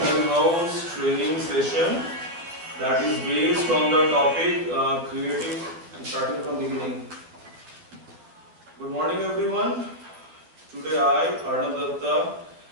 in-house training session that is based on the topic creative, starting from beginning. Good morning everyone. Today I, Arnav Datta,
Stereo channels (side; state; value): left; late; 12 ms